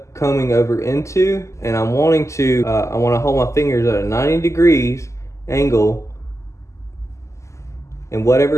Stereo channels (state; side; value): late; right; 0.14 ms